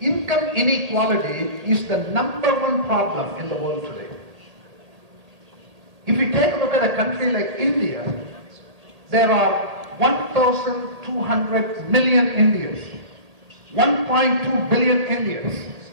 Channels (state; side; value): late; left; 1.8 ms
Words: inequality is the #1 problem in the world today. If we take a look at a country like India, there are 1,200 million Indians, 1.2 billion Indians.